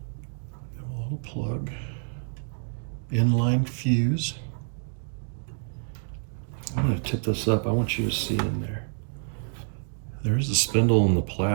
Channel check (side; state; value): left; silent; digital silence